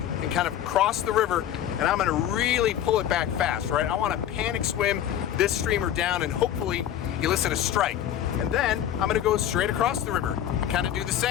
and kind of cross the river, and I'm going to really pull it back fast, right? I want to panic swim this streamer down and hopefully elicit a strike. And then I'm going to go straight across the river and kind of do the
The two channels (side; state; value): right; quieter; 10.9 dB